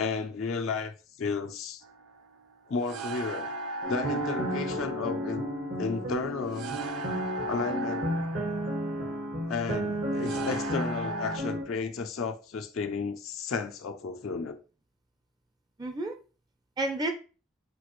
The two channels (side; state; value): both; normal; correlation 0.33